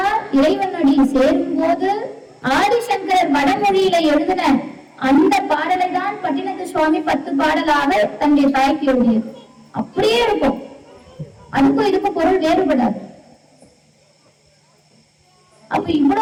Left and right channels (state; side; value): identical; both; correlation 1.00